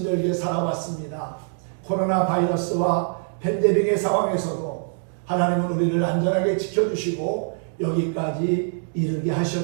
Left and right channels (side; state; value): left; silent; digital silence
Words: 살아왔습니다. 코로나 바이러스와 팬데믹의 상황에서도 하나님은 우리를 안전하게 지켜주시고 여기까지 이르게